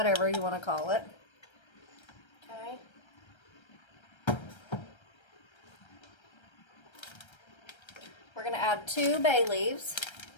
you want to call it. Okay. We're going to add 2 bay leaves.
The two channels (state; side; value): late; right; 1.3 ms